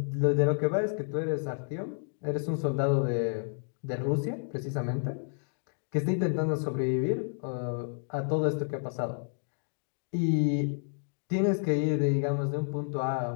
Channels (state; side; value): silent; right; digital silence